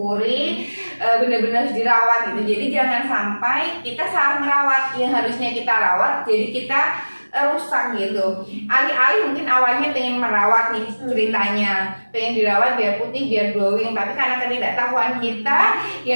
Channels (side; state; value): both; inverted; correlation -1.00